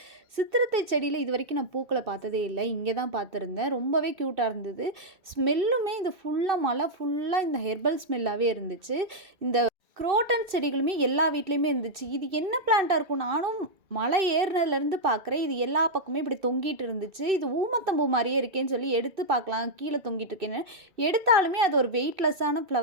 சித்திரத்தை செடியில் இது வரைக்கும் நான் பூக்களை பார்த்ததே இல்லை, இங்கே தான் பார்த்துருந்தேன். ரொம்பவே க்யூட்டாக இருந்தது. ஸ்மெல்லுமே இது ஃபுல்லாக மலை ஃபுல்லாக இந்த ஹெர்பல் ஸ்மெல்லாகவே இருந்துச்சு. இந்த குரோட்டன் செடிகளுமே எல்லா வீட்லேயுமே இருந்துச்சு. இது என்ன பிளான்ட்டாக இருக்கும், நானும் மலை ஏறினதுலேருந்து பார்க்குறேன். இது எல்லா பக்கமே இப்படி தொங்கிட்டு இருந்துச்சு. இது ஊமத்தம்பூ மாதிரியே இருக்கேன்னு சொல்லி எடுத்து பார்க்கலாம், கீழே தொங்கிட்டு இருக்கேன்னு எடுத்தாலுமே அது ஒரு வெயிட்லெஸ்ஸான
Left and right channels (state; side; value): late; left; 2.6 ms